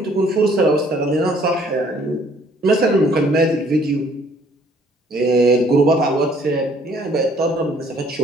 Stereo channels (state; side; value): normal; both; correlation 0.61